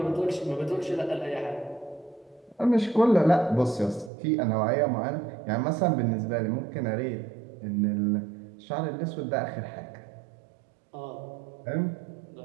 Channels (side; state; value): left; drops out; at 4.1 s